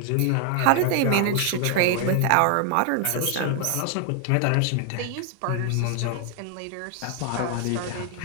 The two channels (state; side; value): different; both; correlation 0.00